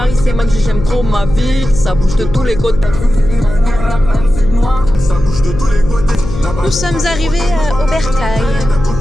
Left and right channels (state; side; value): noise; left; hum, 8 dB below the sound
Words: c'est mag, j'aime trop ma ville. Ça bouge de tous les côtés. Ça bouge de tous les côtés. Nous sommes arrivés à Aubertaille.